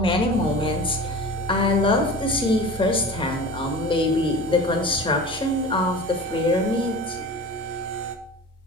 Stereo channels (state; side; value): normal; both; correlation 0.36